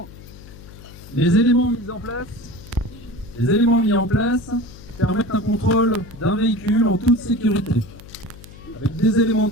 Les éléments mis en place permettent un contrôle d'un véhicule en toute sécurité, avec des éléments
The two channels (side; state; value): left; noise; hum, 18 dB below the sound